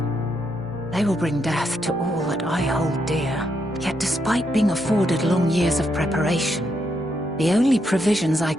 they will bring death to all that I hold dear. Yet despite being afforded long years of preparation, the only provisions I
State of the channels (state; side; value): normal; both; correlation 0.79